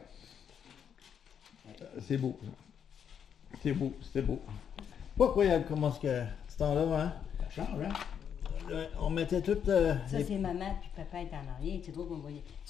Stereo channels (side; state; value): right; quieter; 8.0 dB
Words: C'est beau. Ça. C'est beau, c'était beau. Pas incroyable comment ce temps-là, hein? Ça change, hein? On mettait tout... Ça, c'est maman, puis papa est en arrière. C'est drôle qu'on voyait.